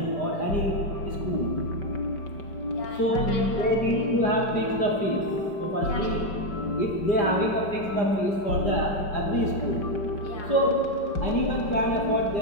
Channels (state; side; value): late; right; 5.0 ms